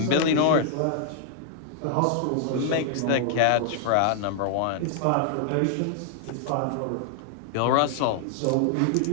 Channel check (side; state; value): both; different; correlation -0.01